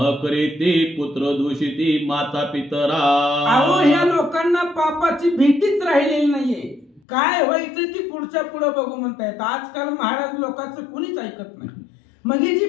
करीते पुत्र दूषिती माता पितरा. अहो ह्या लोकांना पापाची भीतीच राहिलेली नाहीये, काय व्हायचं ती पुढच्या पुढे बघू म्हणतायत. आजकाल महाराज लोकांचं कुणीच ऐकत नाही. मग ही जी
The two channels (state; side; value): drops out; right; at 7.0 s